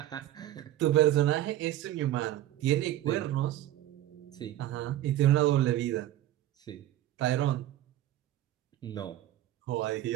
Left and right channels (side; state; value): left; quieter; 13.5 dB